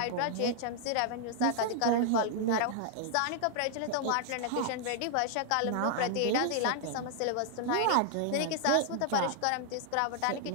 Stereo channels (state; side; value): different; both; correlation -0.01